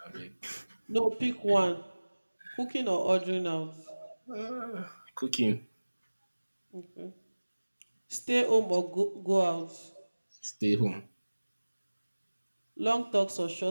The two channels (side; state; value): both; inverted; correlation -1.00